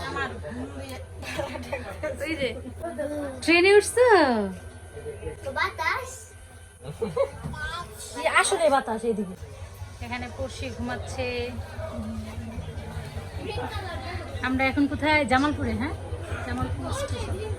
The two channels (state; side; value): identical; both; correlation 1.00